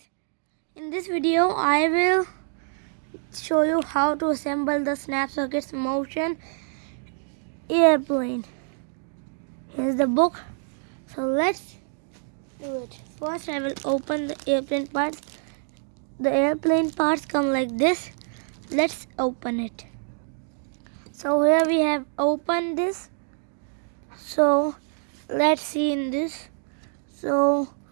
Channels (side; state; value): left; silent; 61 dB below the other